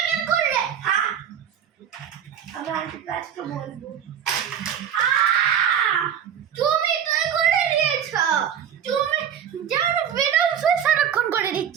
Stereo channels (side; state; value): left; quieter; 8.8 dB